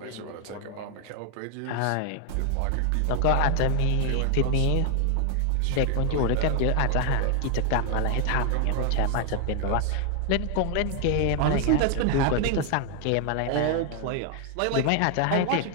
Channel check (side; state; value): both; different; correlation 0.00